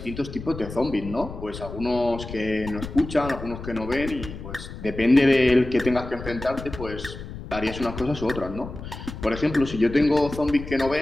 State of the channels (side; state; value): left; noise; rumble, 11 dB below the sound